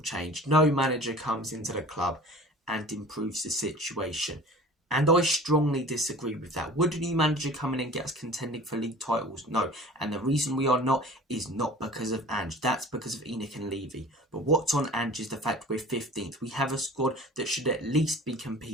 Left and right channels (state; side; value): normal; both; correlation 0.43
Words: change. No manager comes into the club and improves the situation. And I strongly disagree with that. Would a new manager come in and get us contending for league titles? No. And the reason we are not is not because of Ange. That's because of Enoch and Levy. But what's on Ange is the fact we're 15th. We have a squad that should at least be